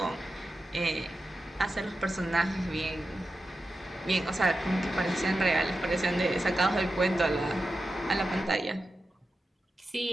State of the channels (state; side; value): normal; both; correlation 0.91